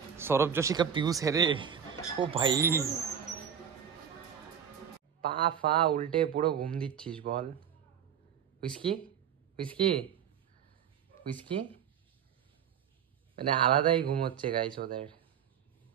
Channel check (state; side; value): quieter; left; 8.2 dB